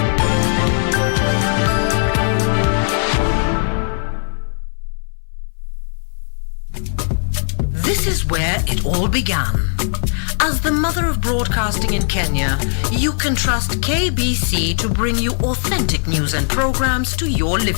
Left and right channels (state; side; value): silent; right; 63 dB below the other